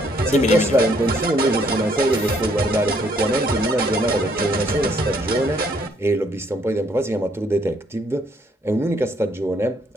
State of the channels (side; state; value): both; normal; correlation 0.67